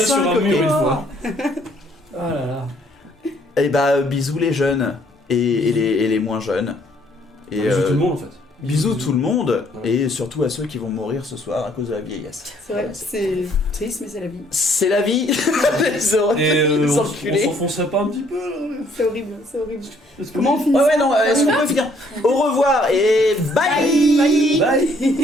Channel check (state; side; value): normal; both; correlation 0.64